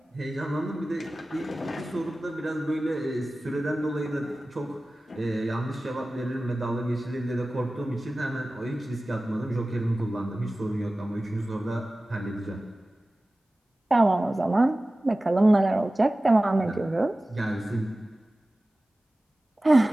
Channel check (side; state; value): both; normal; correlation 0.97